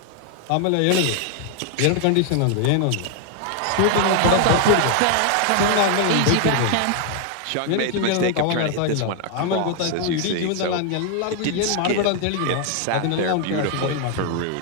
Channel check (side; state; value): both; different; correlation 0.00